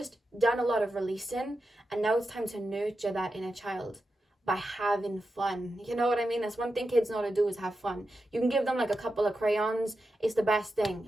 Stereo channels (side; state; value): both; normal; correlation 0.90